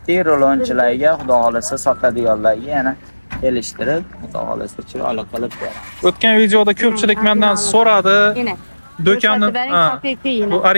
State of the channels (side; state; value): both; inverted; correlation -1.00